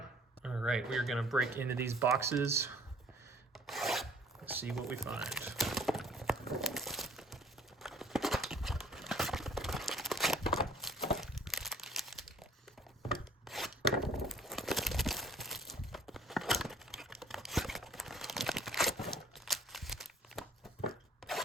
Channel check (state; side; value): normal; both; correlation 0.54